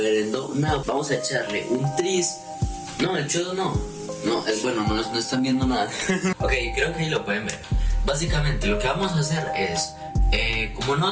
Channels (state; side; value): identical; both; correlation 1.00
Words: No, vamos a echarle un tris. No, el chodo no, es bueno, no están viendo nada. Ok, creo que ahí lo pueden ver. Básicamente lo que vamos a hacer es, como